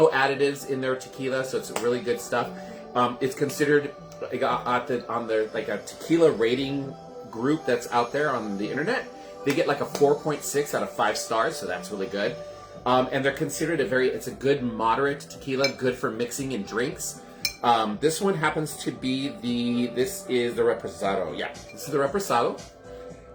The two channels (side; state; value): both; identical; correlation 1.00